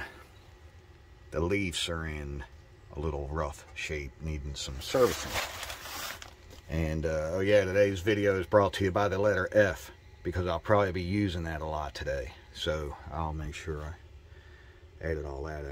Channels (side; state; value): both; identical; correlation 1.00